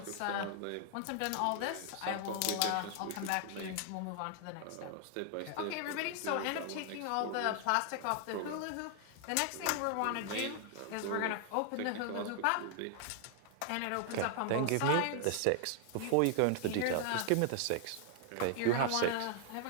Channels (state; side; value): different; both; correlation 0.00